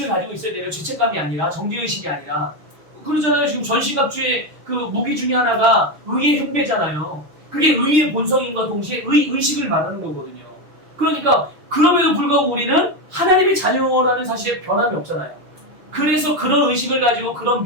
가지고 있어야 돼요. 죄책감이 아니라 정죄의식이 아니라. 그러잖아요. 지금 전시갑주의 그 무기 중에 하나가 의의 흉배잖아요. 그게 의의 본성인과 동시에 의식을 말하는 거거든요. 그러니까 그럼에도 불구하고 우리는 하나님의 자녀라는 사실에 변함이 없잖아요. 그래서 그런 의식을 가지고 그런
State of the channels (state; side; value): late; left; 6.6 ms